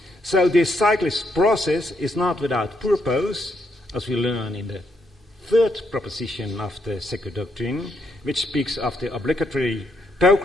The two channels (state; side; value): normal; both; correlation 0.76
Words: So this cyclic process is not without purpose, as we learn in the third proposition of the sacred doctrine, which speaks of the obligatory